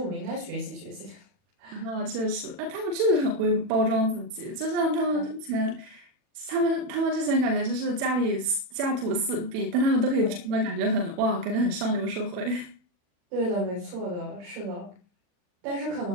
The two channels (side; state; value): left; late; 40 ms